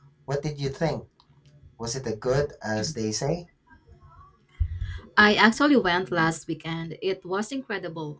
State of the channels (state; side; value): identical; both; correlation 1.00